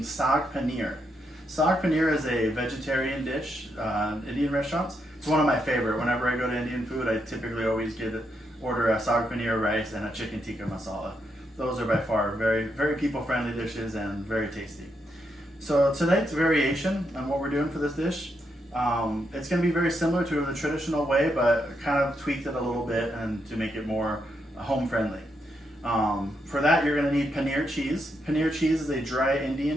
Saag Paneer. Saag Paneer is a vegetarian dish, Indian restaurants. It's one of my favorite. Whenever I go to Indian food, I typically always order a Saag Paneer rice and a chicken tikka masala. Those are by far very people-friendly dishes and very tasty. So tonight's variation on what we're doing for this dish, it's going to be very similar to the traditional way, but kind of tweaked it a little bit and to make it more home-friendly. For that, you're going to need paneer cheese. Paneer cheese is a dry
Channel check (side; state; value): both; normal; correlation 0.81